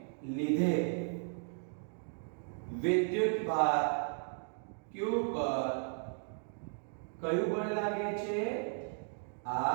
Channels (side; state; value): left; silent; 54 dB below the other